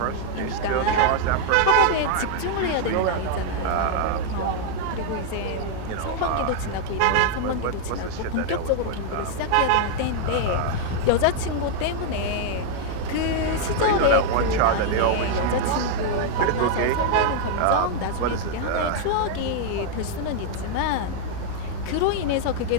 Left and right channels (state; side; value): different; both; correlation 0.00